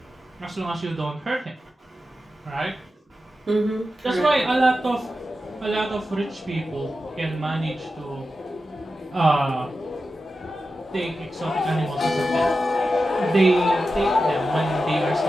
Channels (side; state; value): both; normal; correlation 0.91